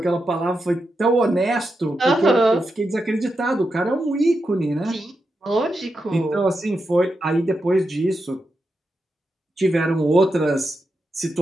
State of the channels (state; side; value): normal; both; correlation 0.87